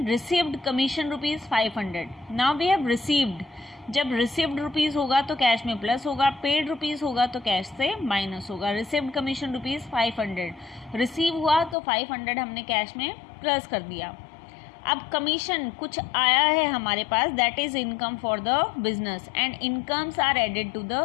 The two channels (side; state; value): right; drops out; at 11.8 s